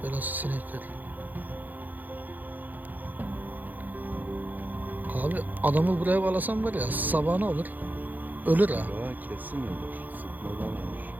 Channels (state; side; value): late; left; 0.084 ms